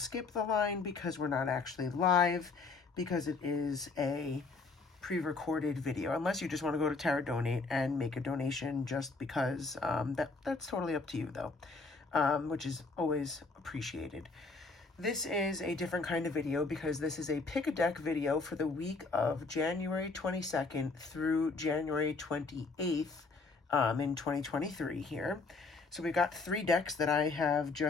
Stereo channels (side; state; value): right; quieter; 4.1 dB